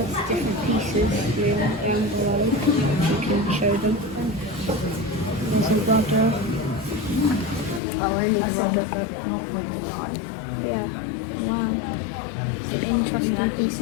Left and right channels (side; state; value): right; drops out; at 7.8 s